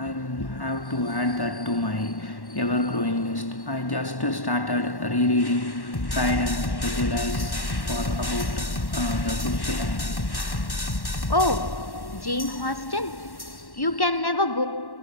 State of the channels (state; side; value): late; right; 1.1 ms